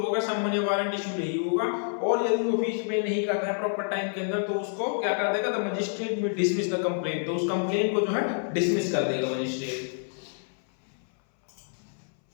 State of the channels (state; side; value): silent; right; 59 dB below the other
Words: होगा समन या वारंट इशू नहीं होगा, और यदि वो फीस पे नहीं करता है प्रॉपर टाइम के अंदर तो उसको क्या कर देगा, the magistrate will dismiss the complaint. तो उस कंप्लेंट को जो है डिसमिस कर देगा मजिस्ट्रेट।